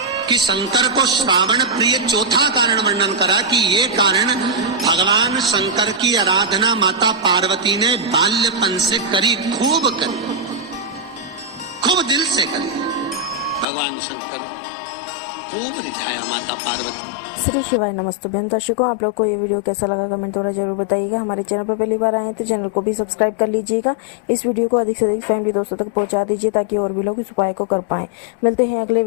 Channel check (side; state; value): right; drops out; at 13.7 s